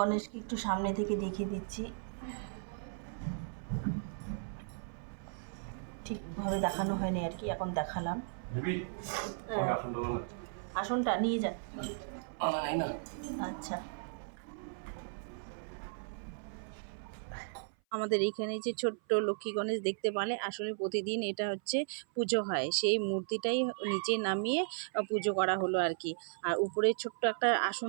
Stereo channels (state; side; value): silent; left; 54 dB below the other